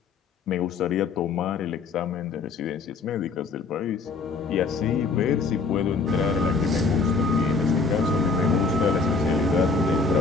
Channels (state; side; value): quieter; right; 4.4 dB